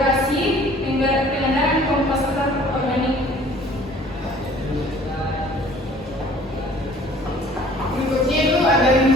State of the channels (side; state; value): both; normal; correlation 0.52